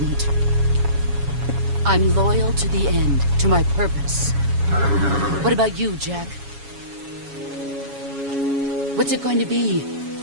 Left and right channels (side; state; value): left; late; 7.2 ms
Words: I'm loyal to the end, to my purpose. What about you, Jack? What's it going to be?